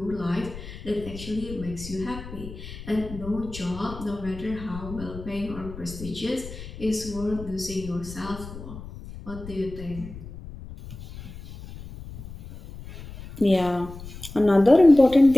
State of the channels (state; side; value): noise; left; rumble, 13 dB below the sound